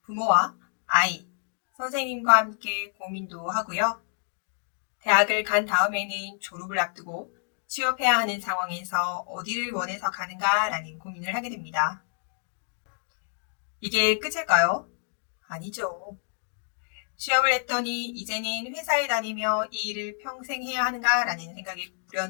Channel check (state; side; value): silent; right; digital silence